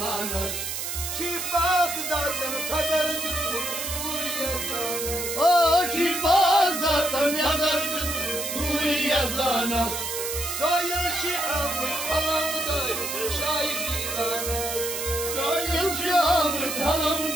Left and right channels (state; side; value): noise; right; hiss, 4 dB below the sound